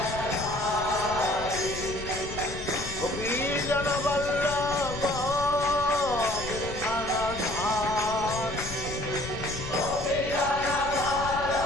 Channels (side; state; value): left; noise; rumble, 10 dB below the sound